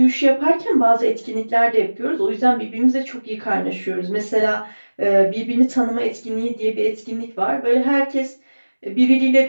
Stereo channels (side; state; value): both; inverted; correlation -1.00